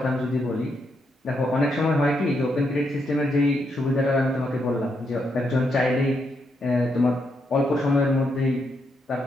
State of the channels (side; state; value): both; normal; correlation 0.79